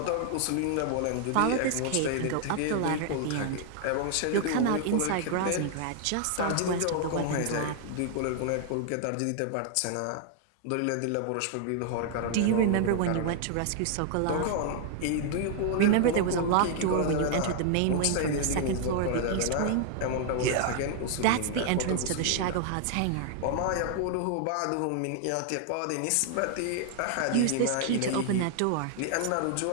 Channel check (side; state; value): both; different; correlation 0.00